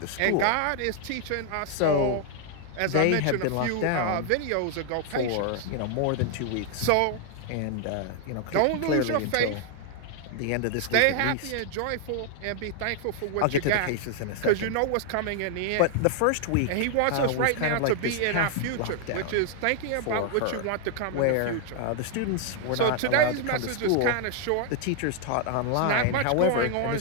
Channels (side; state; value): both; different; correlation 0.00